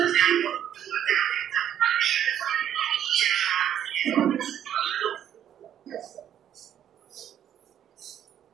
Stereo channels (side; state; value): left; quieter; 10.2 dB